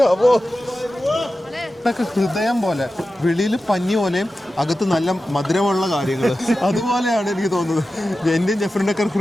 അപ്പോ ഹൃദയം പോലെ വെളിയിൽ പഞ്ഞി പോലെയും അകത്ത് നല്ല മധുരമുള്ള കാര്യങ്ങൾ അതുപോലെയാണ് എനിക്ക് തോന്നുന്നത്. എന്റെയും ജെഫറിന്റെ ഒക്കെ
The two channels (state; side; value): normal; both; correlation 0.93